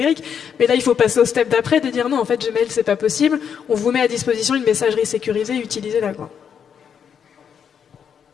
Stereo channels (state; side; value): quieter; right; 7.7 dB